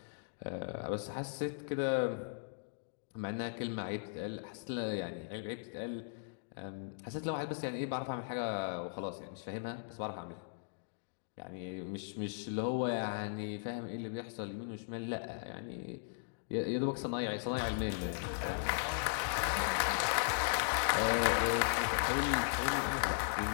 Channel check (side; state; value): right; silent; digital silence